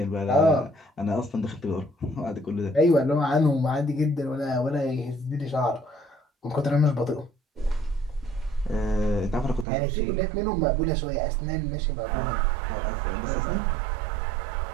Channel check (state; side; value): drops out; left; at 9.7 s